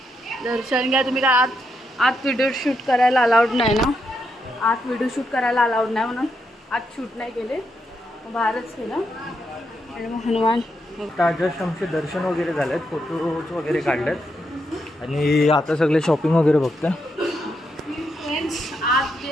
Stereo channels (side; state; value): both; normal; correlation 0.81